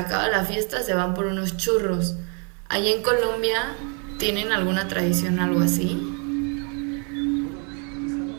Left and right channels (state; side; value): quieter; left; 37.7 dB